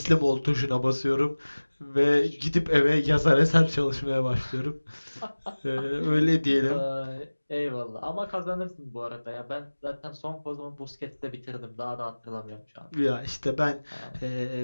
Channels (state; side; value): inverted; both; correlation -1.00